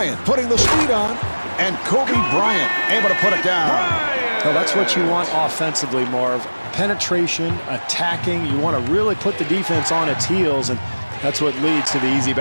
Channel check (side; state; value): both; inverted; correlation -1.00